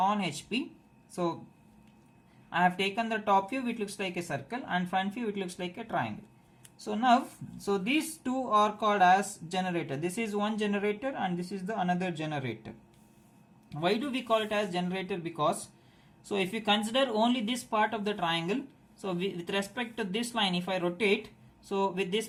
HP. So I have taken the top view, it looks like a circle, and front view it looks like a triangle. So now, so these two are called as generator. This is one generator and this is the another generator. Why do we call it as generator? Because, so if you consider only this part of the triangle, so with respect to this line, if I rotate, so with this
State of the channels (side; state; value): both; identical; correlation 1.00